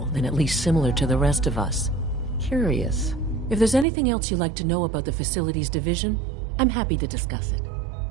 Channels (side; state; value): left; drops out; at 3.9 s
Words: then at least similar to the rest of us. Curious. If there's anything else you'd like to know about the Facilities Division, I'm happy to discuss it.